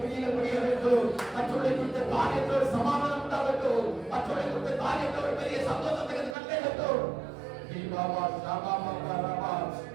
கிரியைகள் முடிய வேண்டும் மற்றவர்களை குறித்த காரியத்தோடு சமாதானம் உண்டாகட்டும் மற்றவர்களை குறித்த காரியத்தோடு பெரிய சந்தோஷத்துக்கு கண்டேகட்டும் பாபா சாபா பாபா ராபா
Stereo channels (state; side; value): drops out; left; at 6.4 s